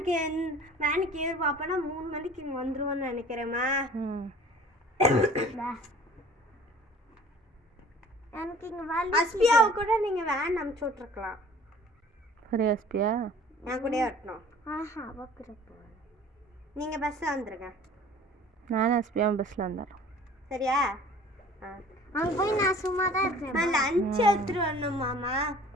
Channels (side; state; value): both; normal; correlation 0.48